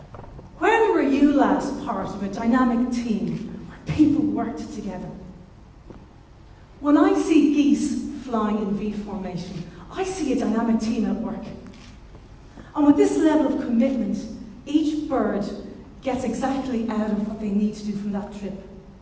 When were you last part of a dynamic team where people worked together? When I see geese flying in V formation, I see a dynamic team at work. And with this level of commitment, each bird gets exactly out of what they need to do from that trip.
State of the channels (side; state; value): both; identical; correlation 1.00